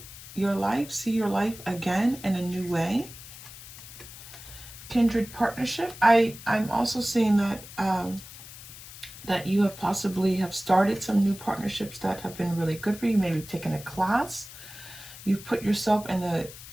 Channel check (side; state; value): left; noise; hiss, 15 dB below the sound